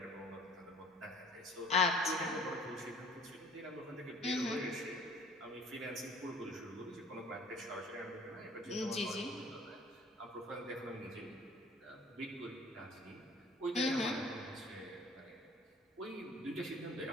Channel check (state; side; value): normal; both; correlation 0.51